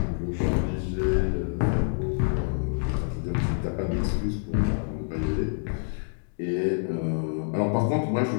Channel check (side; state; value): right; silent; digital silence